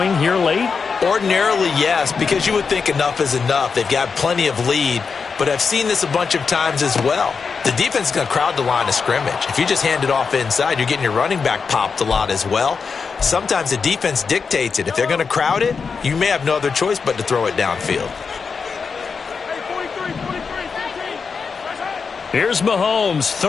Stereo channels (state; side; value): quieter; right; 5.4 dB